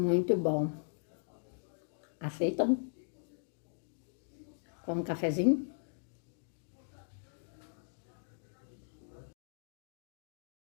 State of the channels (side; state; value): right; silent; digital silence